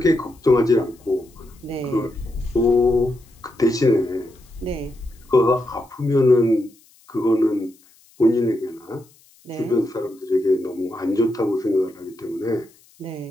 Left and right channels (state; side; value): noise; left; hiss, 29 dB below the sound